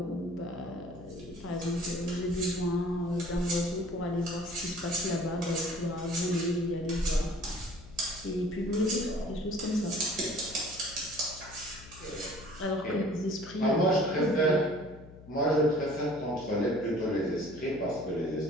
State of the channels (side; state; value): left; noise; hum, 18 dB below the sound